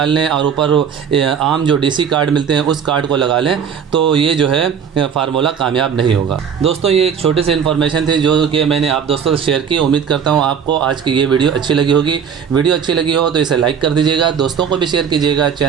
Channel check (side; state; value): left; quieter; 7.4 dB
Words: लें और ऊपर आम जो डीसी कार्ड मिलते हैं उस कार्ड को लगा लें, तो ये जो है फार्मूला कामयाब नहीं होगा। दोस्तों ये एक छोटी सी इन्फॉर्मेशन थी जो कि मैंने आप दोस्तों से शेयर की। उम्मीद करता हूँ आपको आज की ये वीडियो अच्छी लगी होगी। वीडियो अच्छी लगी हो तो इसे लाइक कर दीजिएगा, दोस्तों को भी शेयर कीजिएगा।